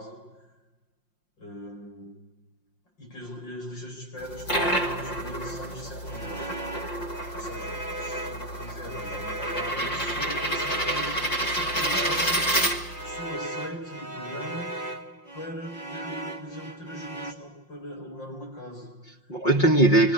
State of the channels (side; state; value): right; late; 5.6 ms